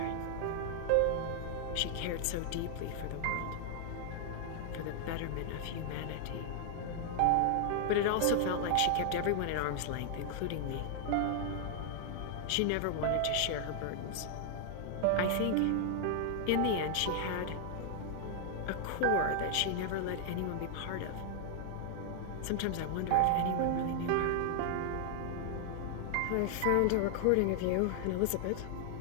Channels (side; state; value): both; different; correlation 0.00